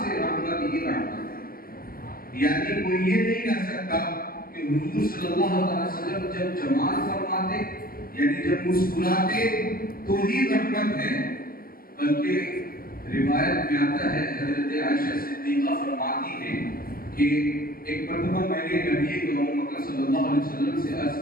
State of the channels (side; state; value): right; late; 0.42 ms